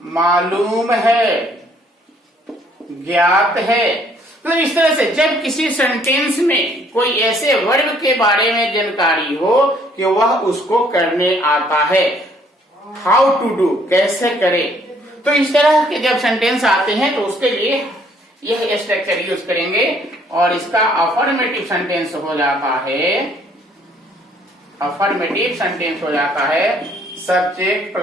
मालूम है, ज्ञात है। तो इस तरह से जब किसी सेंटेंस में कोई ऐसे वर्ब के बारे में जानकारी हो कि वह उसको करने आता है, हाउ टू डू, कैसे करे, तो इस तरह के जब सेंटेंस आते हैं तो उसके लिए यह स्ट्रक्चर यूज करेंगे और इसका अफर्मेटिव सेंटेंस हो जाता है, अफर्मेटिव सेंटेंस हो जाता है सब्जेक्ट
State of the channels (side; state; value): both; normal; correlation 0.63